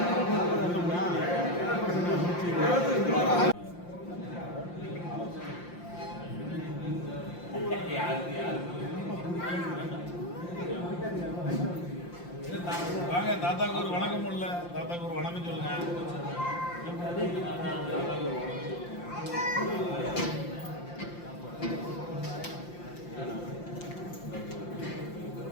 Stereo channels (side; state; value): right; late; 5.7 ms